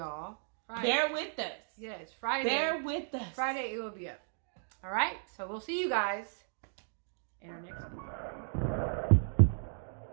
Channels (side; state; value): left; silent; digital silence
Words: Friday. Bear with us. Yes, Friday. Bear with us. Friday it will be up. All right? So we'll see you guys in our next one.